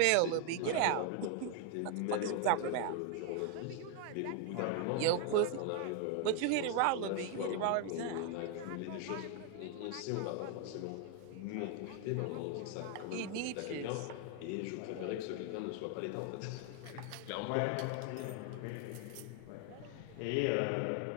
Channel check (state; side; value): different; both; correlation 0.01